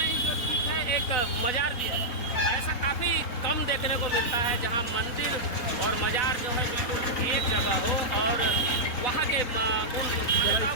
ही जो ठीक है एक मजार भी है। ऐसा काफ़ी कम देखने को मिलता है जहाँ मंदिर और मजार जो है बिल्कुल एक जगह हो और वहाँ के उन मान्यताओं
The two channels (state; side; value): late; right; 4.1 ms